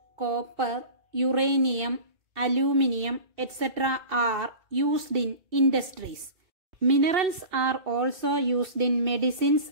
copper, uranium, aluminium, etc. are used in industries. Minerals are also used in medicines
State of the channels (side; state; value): left; late; 2.7 ms